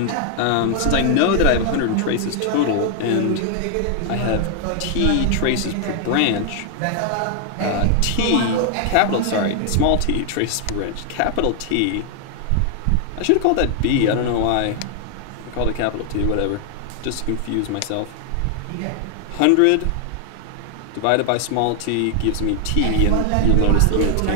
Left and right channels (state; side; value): different; both; correlation 0.00